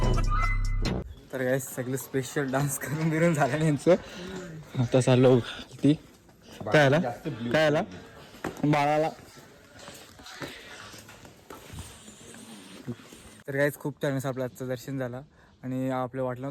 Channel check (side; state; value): both; identical; correlation 1.00